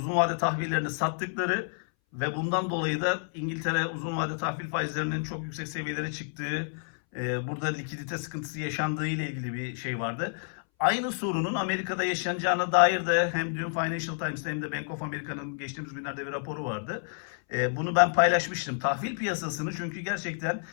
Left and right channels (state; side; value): silent; right; 58 dB below the other